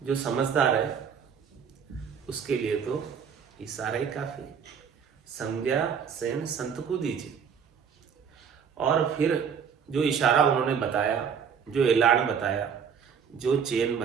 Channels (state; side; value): quieter; left; 7.1 dB